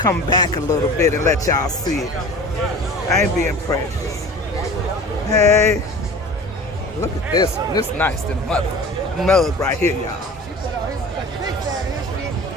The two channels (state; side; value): normal; both; correlation 0.40